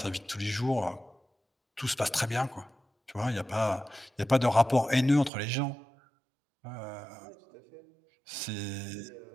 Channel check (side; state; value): left; drops out; at 5.3 s